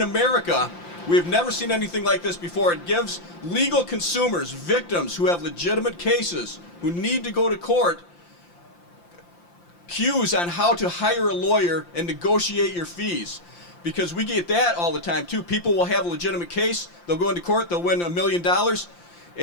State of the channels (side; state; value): right; late; 5.8 ms